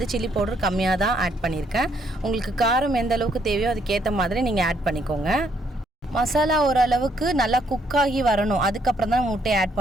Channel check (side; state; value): both; normal; correlation 0.70